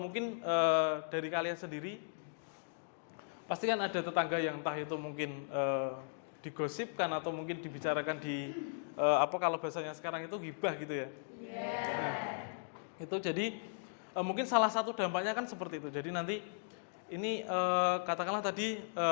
dari kalian sendiri pasti kan ada tetangga yang entah itu mungkin digosipkan atau mungkin dibicarakan di kalau bahasanya sekarang itu ghibah gitu ya. Nah, itu jadi mungkin salah satu dampaknya kan seperti itu. Jadi nanti ini katakanlah tadi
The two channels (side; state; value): right; silent; digital silence